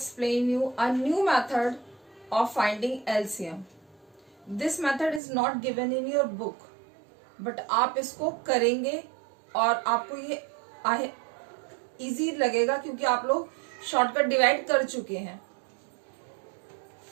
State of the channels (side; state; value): left; drops out; at 5.2 s